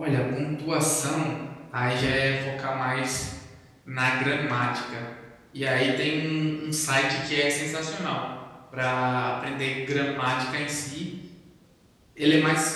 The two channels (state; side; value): identical; both; correlation 1.00